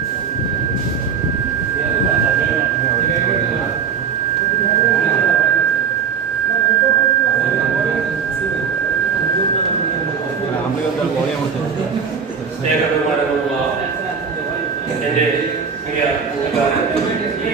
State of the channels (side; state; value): left; quieter; 6.6 dB